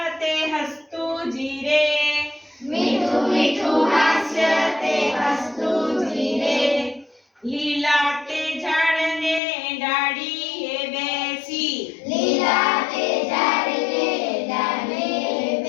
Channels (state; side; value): drops out; right; at 9.4 s